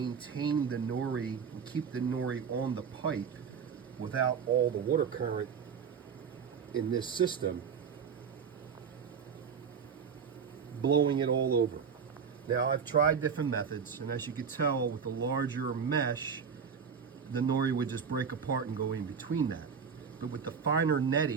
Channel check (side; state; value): left; quieter; 6.5 dB